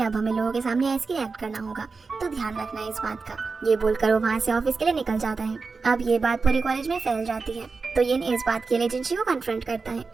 अब हमें लोगों के सामने ऐसे एक्ट करना होगा, तो ध्यान रखना है इस बात का। ये बोलकर वो वहाँ से ऑफिस के लिए निकल जाता है। अब ये बात पूरे कॉलेज में फैल जाती है, तो ये इस बात के लिए जिनशी को कन्फ्रंट करता है।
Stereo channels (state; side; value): quieter; left; 4.4 dB